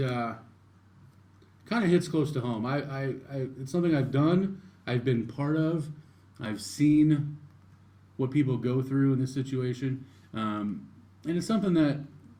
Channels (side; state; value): both; identical; correlation 1.00